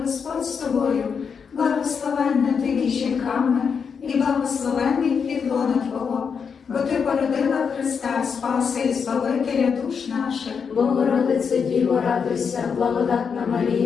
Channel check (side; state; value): right; quieter; 6.3 dB